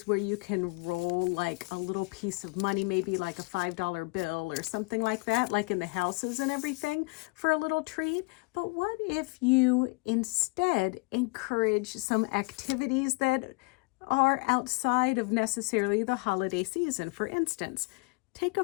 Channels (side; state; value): right; quieter; 29.0 dB